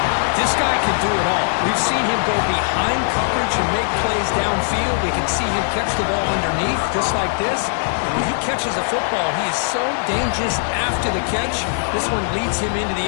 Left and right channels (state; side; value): silent; right; digital silence